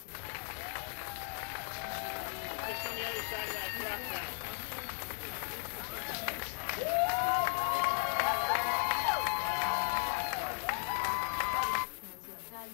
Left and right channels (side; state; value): right; silent; 54 dB below the other